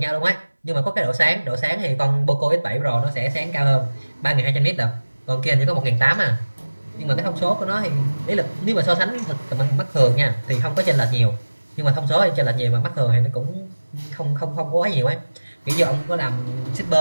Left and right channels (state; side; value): inverted; both; correlation -1.00